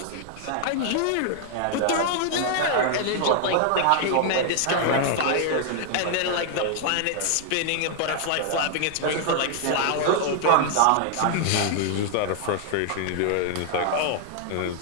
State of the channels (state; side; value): different; both; correlation 0.00